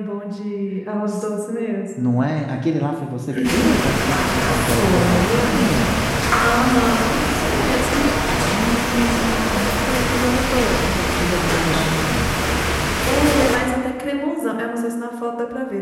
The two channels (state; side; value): identical; both; correlation 1.00